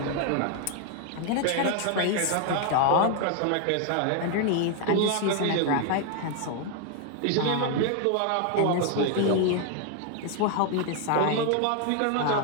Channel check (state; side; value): different; both; correlation 0.00